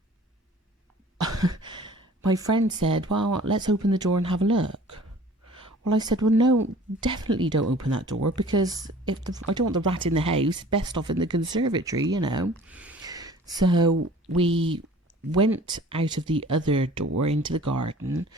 my friend said, well, let's open the door and have a look. Well, I said, well, no, definitely don't open that door because I don't want the rat in the house, best off in the conservatory, you know. So we went out of the other door into the garden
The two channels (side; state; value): both; normal; correlation 0.48